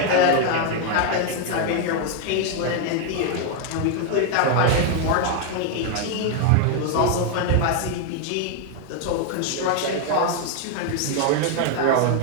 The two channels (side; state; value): both; different; correlation 0.01